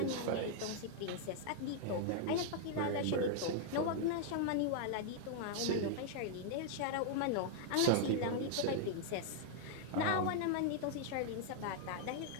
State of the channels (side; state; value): both; different; correlation -0.01